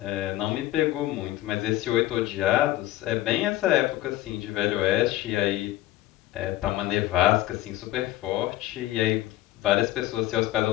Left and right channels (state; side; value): quieter; right; 15.5 dB